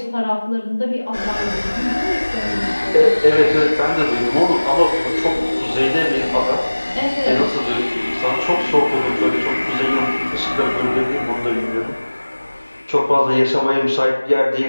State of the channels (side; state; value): both; inverted; correlation -1.00